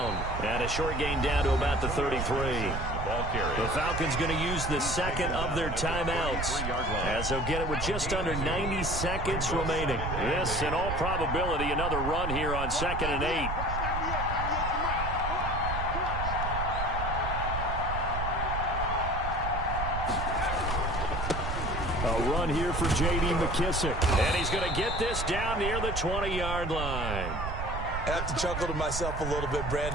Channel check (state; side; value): noise; right; rumble, 4 dB below the sound